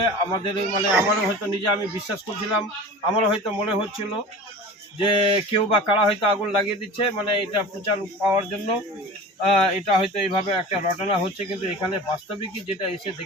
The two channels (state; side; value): normal; both; correlation 0.36